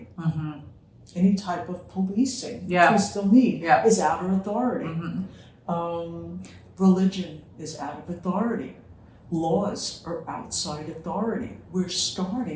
Any type of policing, which we still need, is outer authority. Religion is out of authority. Laws are outside authority. We're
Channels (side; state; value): both; identical; correlation 1.00